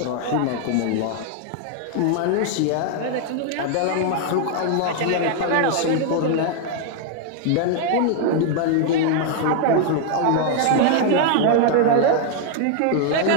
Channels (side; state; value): both; different; correlation 0.00